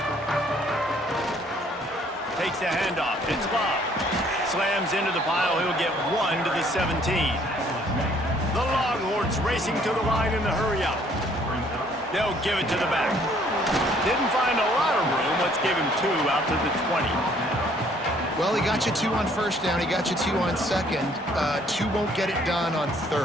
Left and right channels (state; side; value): normal; both; correlation 0.61